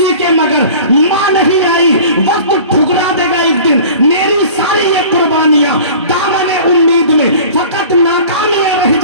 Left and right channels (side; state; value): both; inverted; correlation -0.43